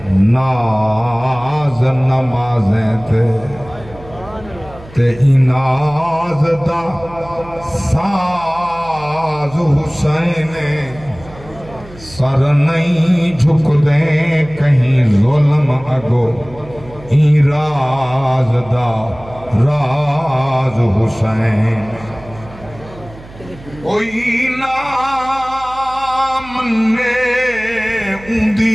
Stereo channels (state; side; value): noise; right; hum, 19 dB below the sound